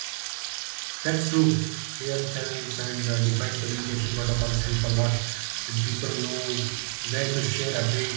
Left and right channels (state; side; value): silent; left; 60 dB below the other